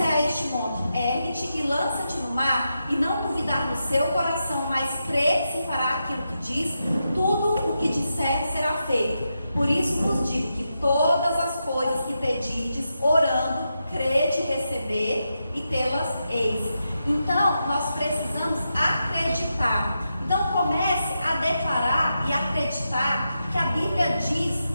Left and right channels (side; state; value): both; inverted; correlation -0.87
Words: a este monte, ergue-te e lança-te no mar, e não duvidar no seu coração, mas crer que se fará aquilo que diz, tudo o que disser será feito. Por isso vos digo que todas as coisas que pedides, orando, crede receber e tê-las eis. Então, nós precisamos acreditar. Então comece a declarar e acreditar que a Bíblia diz